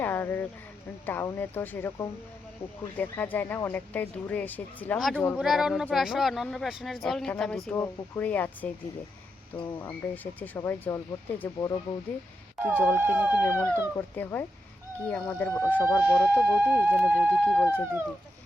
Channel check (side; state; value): both; normal; correlation 0.84